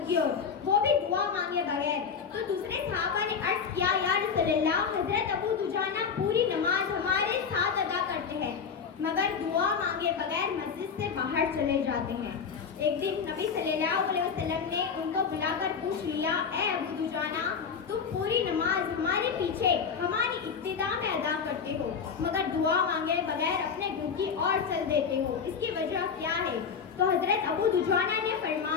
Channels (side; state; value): right; quieter; 6.3 dB